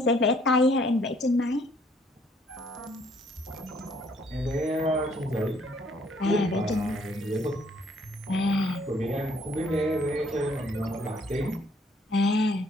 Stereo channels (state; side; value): normal; both; correlation 0.64